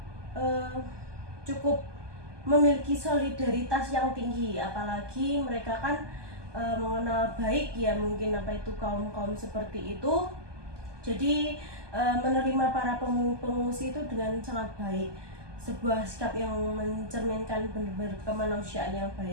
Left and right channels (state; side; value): late; left; 1.2 ms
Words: cukup memiliki solidaritas yang tinggi, apalagi mereka kan mengenal baik ya mungkin kaum seperti itu. Jadi menerima para pengungsi itu dengan sangat baik, sebuah sikap yang mencerminkan benar-benar kemanusiaan yang